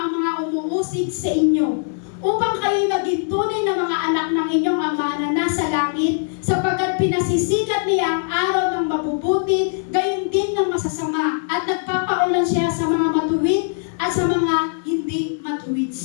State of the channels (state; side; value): silent; right; 65 dB below the other